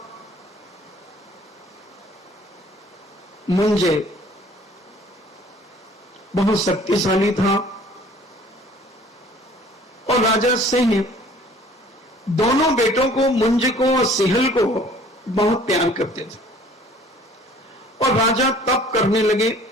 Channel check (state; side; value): normal; both; correlation 0.53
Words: मुंज बहुत शक्तिशाली था, राजा सिंह दोनों बेटों को, मुंज को और सिहल को बहुत प्यार करते थे और राजा तप करने लगे।